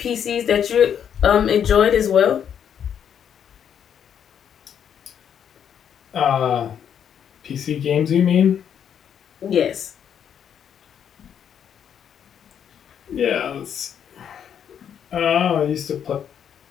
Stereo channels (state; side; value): quieter; right; 8.6 dB